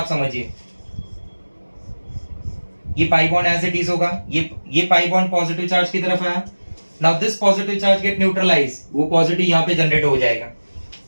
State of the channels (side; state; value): both; inverted; correlation -1.00